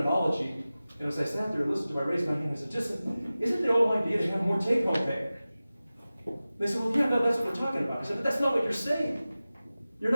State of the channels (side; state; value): both; inverted; correlation -0.96